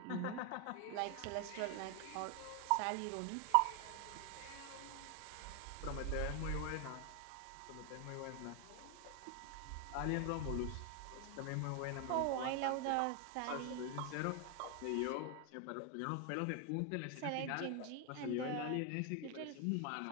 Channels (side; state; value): both; different; correlation 0.01